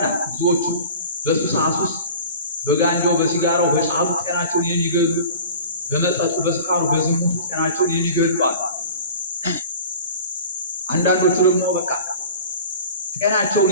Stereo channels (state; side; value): inverted; both; correlation -0.41